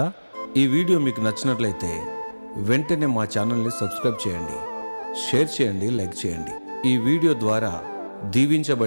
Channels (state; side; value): inverted; both; correlation -1.00